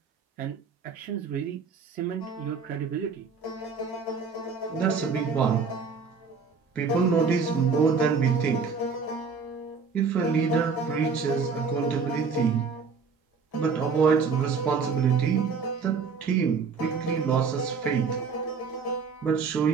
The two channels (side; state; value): left; quieter; 5.3 dB